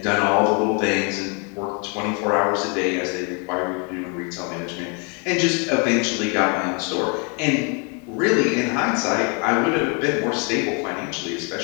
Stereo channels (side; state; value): right; quieter; 35.0 dB